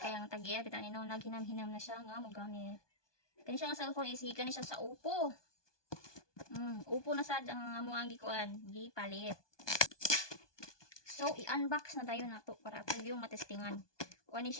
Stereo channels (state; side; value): late; right; 1.2 ms